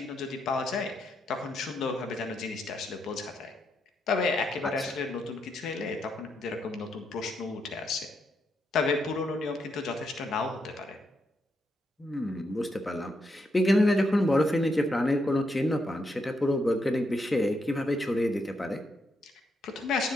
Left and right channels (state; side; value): normal; both; correlation 0.80